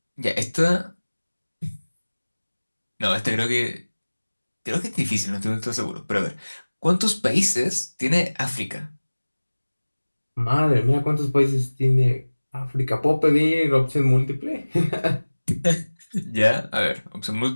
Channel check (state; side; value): inverted; both; correlation -1.00